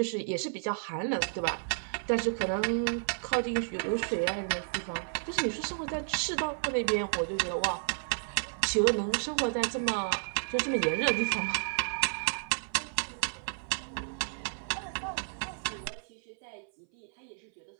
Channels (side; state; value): left; silent; 57 dB below the other